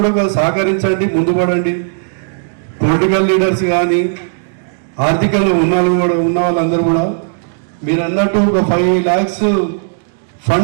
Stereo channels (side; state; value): left; silent; digital silence